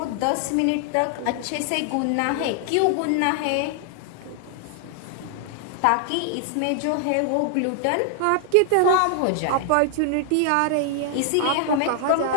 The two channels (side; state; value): both; different; correlation 0.00